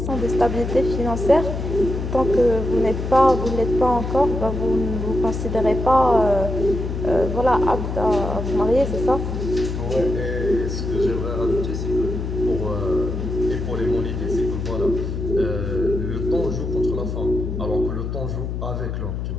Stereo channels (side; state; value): left; noise; hum, 4 dB below the sound